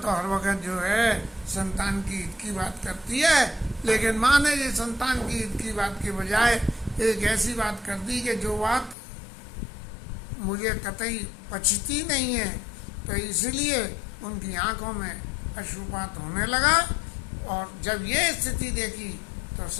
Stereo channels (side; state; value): right; drops out; at 9.0 s